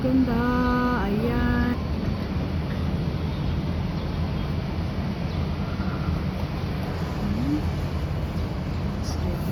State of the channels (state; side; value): identical; both; correlation 1.00